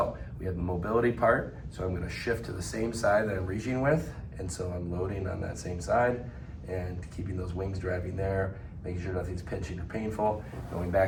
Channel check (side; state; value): both; identical; correlation 1.00